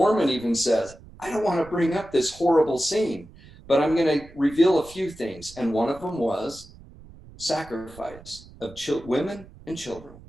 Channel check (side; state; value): right; noise; rumble, 21 dB below the sound